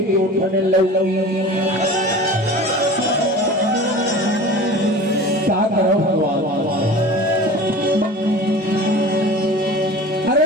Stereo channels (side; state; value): both; normal; correlation 0.38